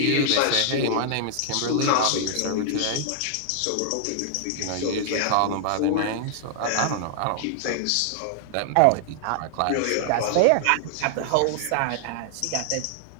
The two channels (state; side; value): different; both; correlation -0.01